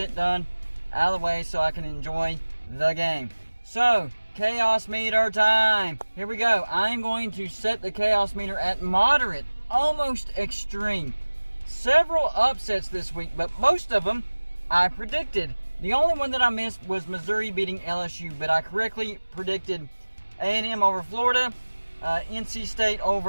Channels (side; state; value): both; inverted; correlation -1.00